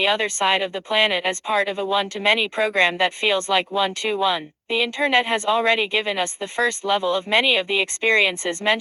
other side of the planet as part of a one-to-many program that feels like one-to-one. The internet has already given us the first level of many of the experiences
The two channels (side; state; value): both; identical; correlation 1.00